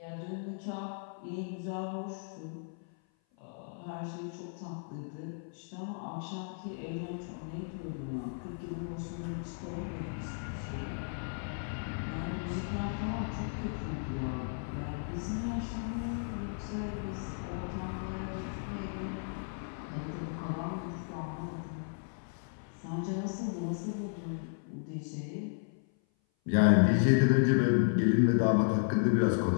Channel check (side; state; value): right; silent; 55 dB below the other